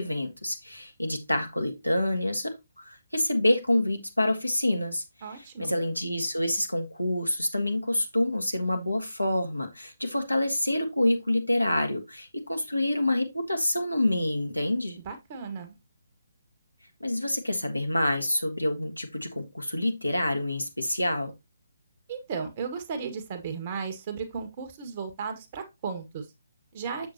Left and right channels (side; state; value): both; inverted; correlation -0.92